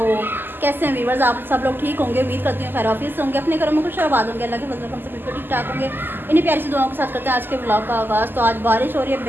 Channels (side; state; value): left; late; 0.093 ms